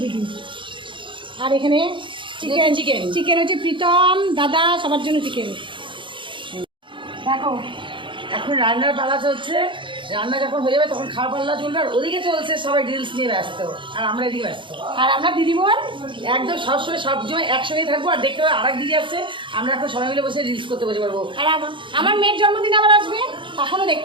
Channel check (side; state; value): left; late; 0.24 ms